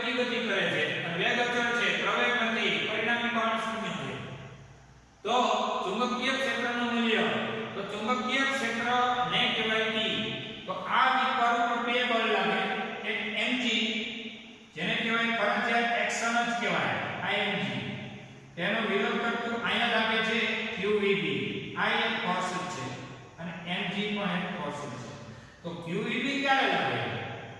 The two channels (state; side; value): identical; both; correlation 1.00